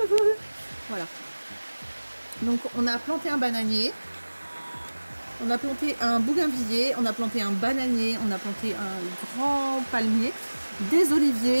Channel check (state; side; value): inverted; both; correlation -1.00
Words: voilà. Donc on a planté un bananier. On a planté un bougainvillier, on a planté un bananier, on a planté un grand palmier, des